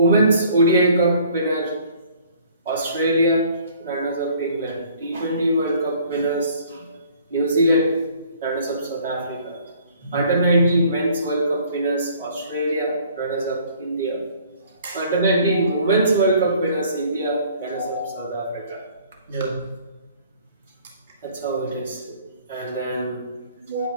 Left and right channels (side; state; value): both; inverted; correlation -0.56